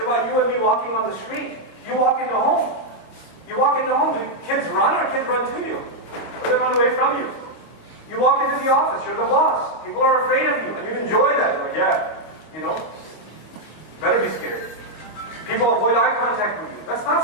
you and me walking on the street. You walk into home. You walk into home, do kids run or kids run to you? Or they run away from you? You walk into the office, you're the boss. People are afraid of you, and you enjoy that. You're like, better be scared. People avoid eye contact with you. That's not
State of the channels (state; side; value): late; right; 25 ms